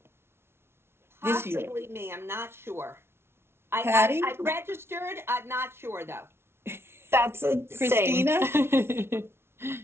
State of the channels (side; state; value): left; late; 0.12 ms